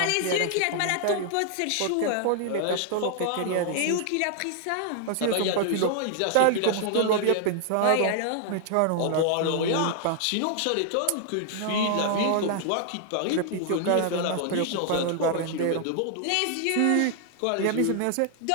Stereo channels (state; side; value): different; both; correlation 0.00